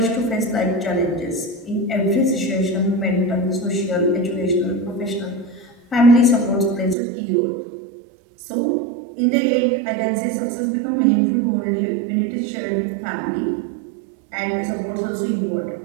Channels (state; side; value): drops out; left; at 7.0 s